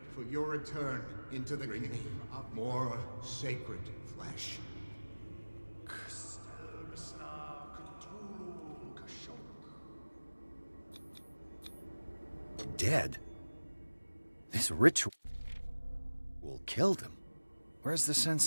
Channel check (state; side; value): inverted; both; correlation -1.00